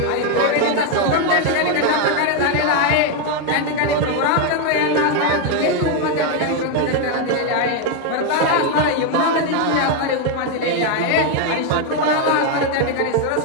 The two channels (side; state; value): both; different; correlation 0.01